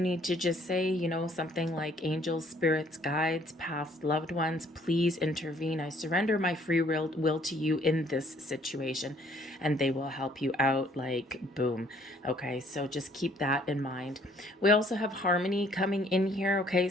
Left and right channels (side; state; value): both; normal; correlation 0.61